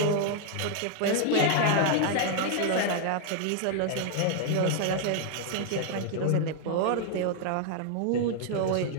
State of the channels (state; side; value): different; both; correlation 0.00